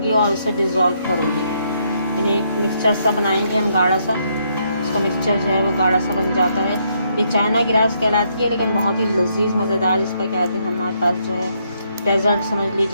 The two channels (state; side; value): inverted; both; correlation -0.74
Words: और इसे डिज़ोल्व करूँगी, यानी मिक्सचर सा बनाएंगे हम गाढ़ा सा। इसका मिक्सचर जो है वो गाढ़ा सा बन जाता है। ये चाइना ग्रास कहलाती है लेकिन बहुत ही लजीज मज़ेदार इसका कहते हैं हमारे पास जो है डेजर्ट समझ